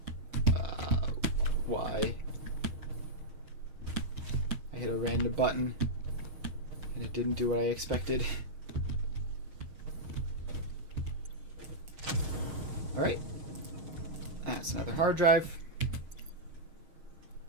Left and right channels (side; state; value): left; late; 6.4 ms